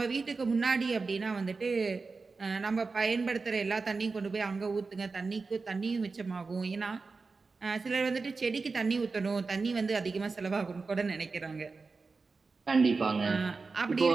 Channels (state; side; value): quieter; left; 4.2 dB